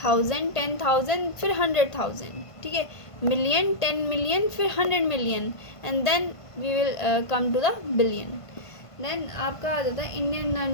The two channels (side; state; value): right; late; 1.5 ms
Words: 1000 10,000 फिर 100,000. ठीक है. मिलियन 10 मिलियन फिर 100 million and then we will come to the billion. Then आपका आ जाता है इंडियन